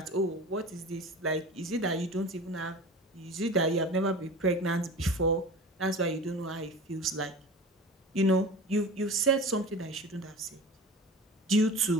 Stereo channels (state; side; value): normal; both; correlation 0.35